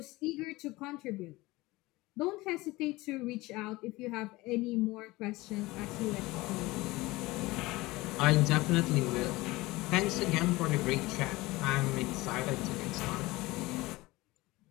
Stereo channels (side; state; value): right; quieter; 20.6 dB